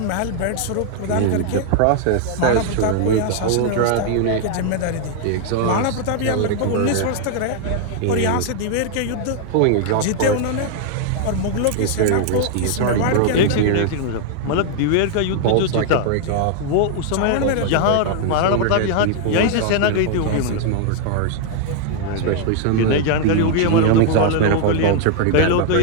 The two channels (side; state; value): both; different; correlation 0.00